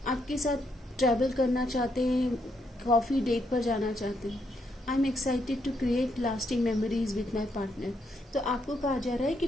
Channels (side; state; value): both; normal; correlation 0.77